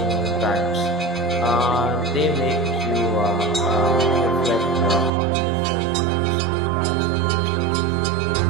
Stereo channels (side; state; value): left; drops out; at 5.1 s